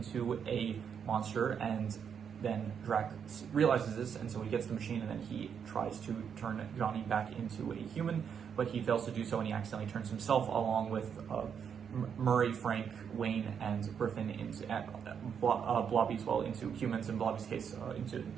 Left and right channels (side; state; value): left; quieter; 7.4 dB